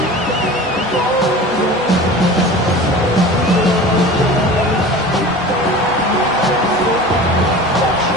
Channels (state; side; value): normal; both; correlation 0.37